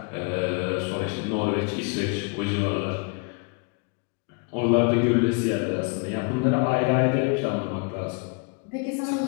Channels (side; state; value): right; quieter; 34.2 dB